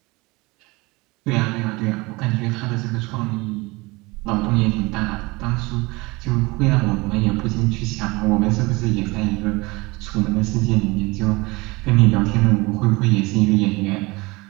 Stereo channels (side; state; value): left; quieter; 23.8 dB